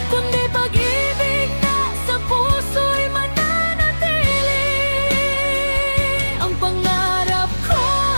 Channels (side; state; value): both; inverted; correlation -1.00